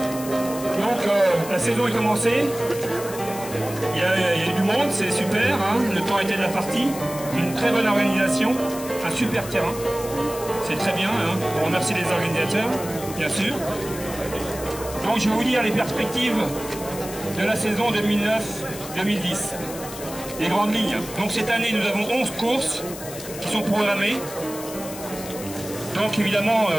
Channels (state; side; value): noise; left; hiss, 12 dB below the sound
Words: Donc la saison est commencée, il y a du monde, c'est super, hein, le temps était de la partie, une très bonne organisation, un super terrain, c'est très bien, hein. On remercie les organisateurs, bien sûr. Donc je vais vous dire les perspectives de la saison 2009-2010, les grandes lignes. Donc cette année nous avons 11 courses qui sont programmées. Donc évidemment